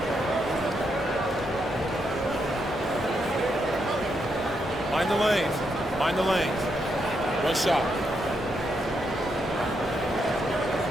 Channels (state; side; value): normal; both; correlation 0.80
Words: Mind the lanes. Mind the lanes. One shot.